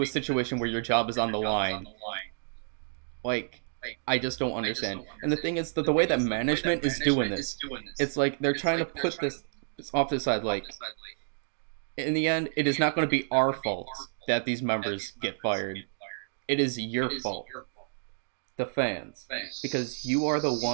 a situation where your job is on the line? Like, I just don't understand. And the thing is that the way that management is doing this, it's like they're trying to put this off to the side. Like, in the end, it is not going to be our fault that these members get fired. It is your fault, the fans, because you are the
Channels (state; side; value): silent; left; digital silence